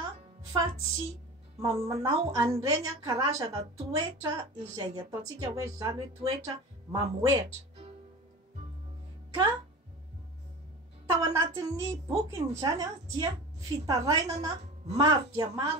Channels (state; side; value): normal; both; correlation 0.34